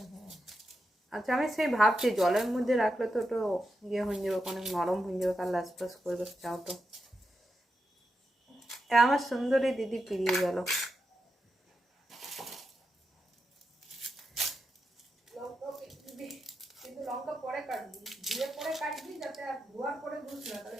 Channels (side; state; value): both; normal; correlation 0.87